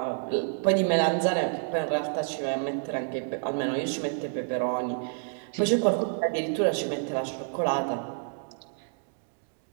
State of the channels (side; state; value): left; silent; 59 dB below the other